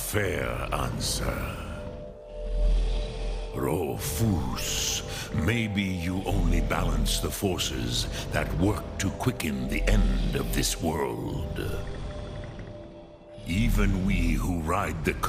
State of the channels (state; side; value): identical; both; correlation 1.00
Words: answer. Rofus, maybe you only balance the forces that work to quicken the end of this world. Even we who ride the